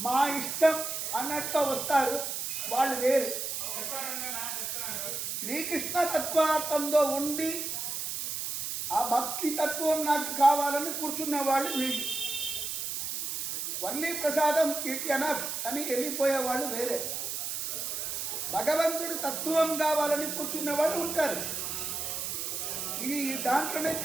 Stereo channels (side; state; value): right; noise; hiss, 3 dB below the sound